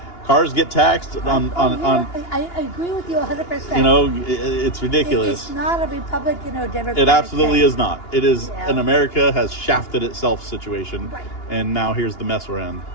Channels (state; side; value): late; right; 2.9 ms